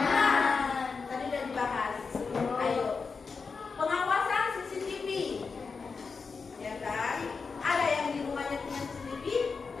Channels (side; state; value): right; quieter; 4.9 dB